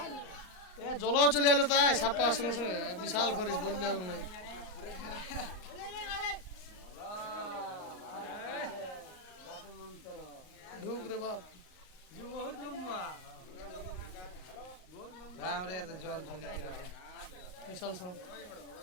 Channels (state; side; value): late; right; 38 ms